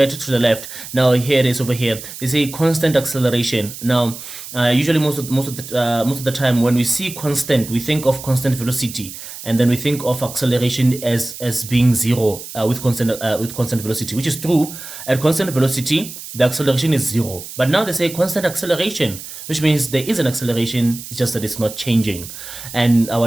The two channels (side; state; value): right; noise; hiss, 12 dB below the sound